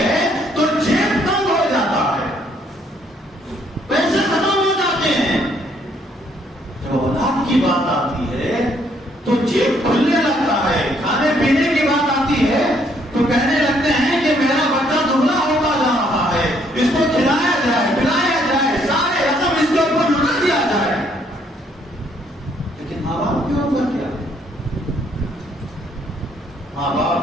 تو جیب تنگ ہو جاتا ہے، پیسے ختم ہو جاتے ہیں. جب اولاد کی بات آتی ہے تو جیب کھلنے لگتا ہے. کھانے پینے کی بات آتی ہے تو کہنے لگتے ہیں کہ میرا بچہ دبلا ہوتا جا رہا ہے، اس کو کھلایا جائے پلایا جائے، سارے رقم اس کے اوپر لٹا دیا جائے. لیکن ماں باپ کے اوپر کیا ہے؟ ماں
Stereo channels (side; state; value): both; normal; correlation 0.68